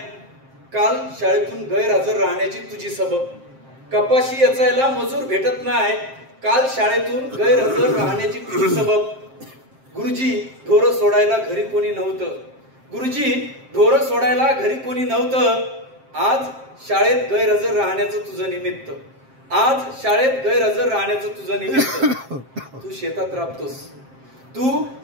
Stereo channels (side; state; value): left; late; 7.6 ms